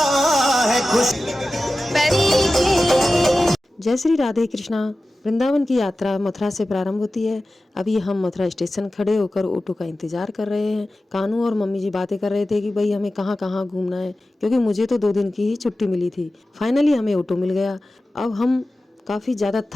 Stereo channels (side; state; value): both; normal; correlation 0.95